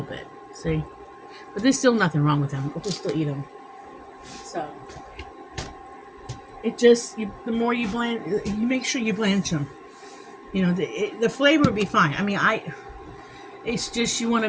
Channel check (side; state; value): both; identical; correlation 1.00